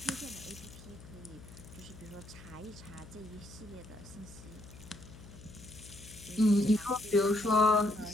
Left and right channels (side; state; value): left; noise; hum, 17 dB below the sound